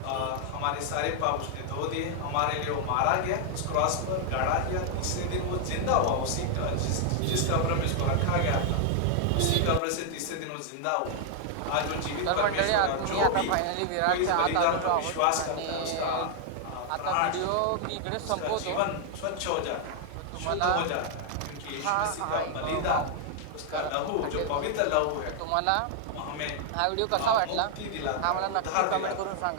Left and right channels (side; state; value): both; different; correlation 0.00